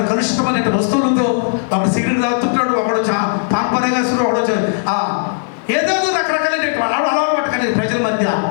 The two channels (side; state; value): right; silent; digital silence